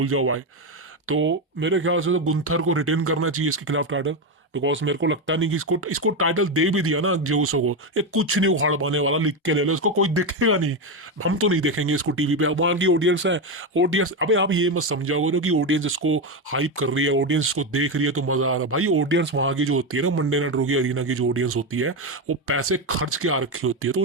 जाओ भाई। तो मेरे ख्याल से तो गुंथर को रिटेन करना चाहिए इसके खिलाफ टाइटल, बिकॉज मेरे को लगता नहीं कि इसको इसको टाइटल दे भी दिया ना जेउसो को, ये कुछ नहीं उखाड़ पाने वाला, लिख के ले लो, इसको कोई देखेगा नहीं। हम तो नहीं देखेंगे इसको टीवी पे, वहां की ऑडियंस है। ऑडियंस, अबे आप ये मत समझाओ ना कि ऑडियंस इसको हाइप कर रही है, ऑडियंस इसको देख रही है तो मजा आ रहा है। भाई ऑडियंस वहां की जो होती है ना, मंडे नाइट रॉ की अरीना की जो ऑडियंस होती है, वो पैसे खर्च के आ रखी होती है, तो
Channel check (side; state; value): both; normal; correlation 0.11